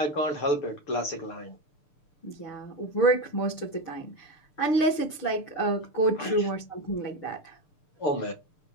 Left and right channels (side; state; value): right; late; 6.7 ms